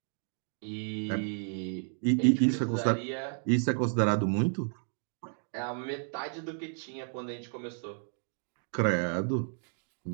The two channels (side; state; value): left; silent; 56 dB below the other